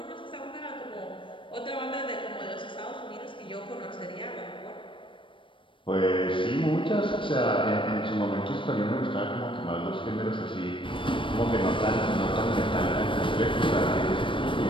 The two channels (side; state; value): right; late; 0.25 ms